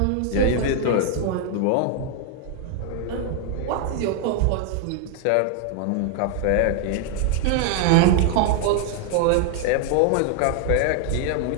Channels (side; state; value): both; different; correlation 0.00